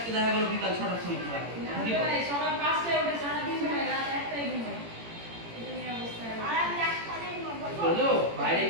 দেখা গেল বিকাল 6টার সময় খেলা হবে সকাল 5টায় উঠে সারা দিন ঘুমাই রাত 1টায় ঘুমাই এটা নিয়ে অবস্থা বলো বাইরে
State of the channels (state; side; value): late; left; 18 ms